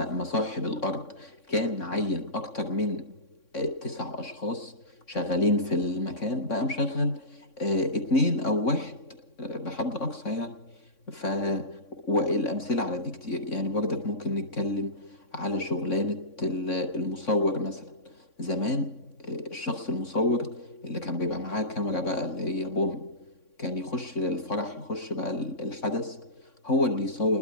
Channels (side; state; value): right; late; 3.6 ms